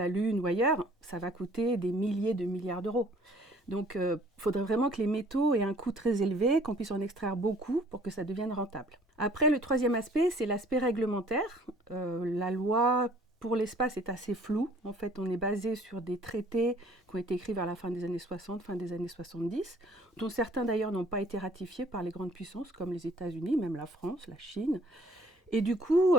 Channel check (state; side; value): normal; both; correlation 0.56